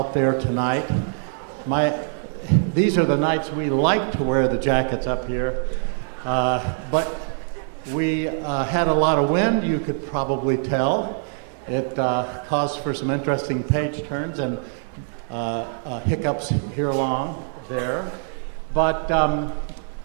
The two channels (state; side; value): silent; left; digital silence